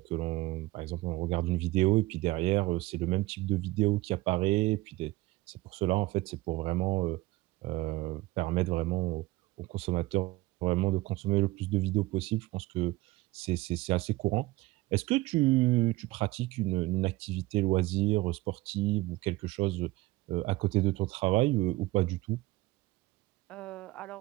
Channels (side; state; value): left; quieter; 19.3 dB